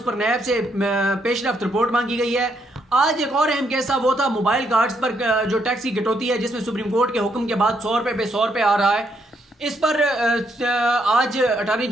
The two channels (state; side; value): normal; both; correlation 0.74